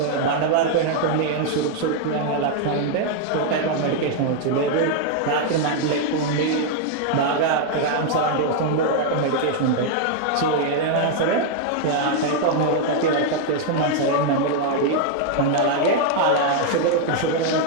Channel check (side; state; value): both; different; correlation 0.00